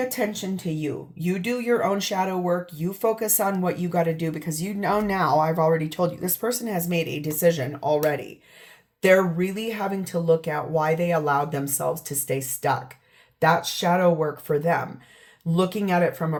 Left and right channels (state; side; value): identical; both; correlation 1.00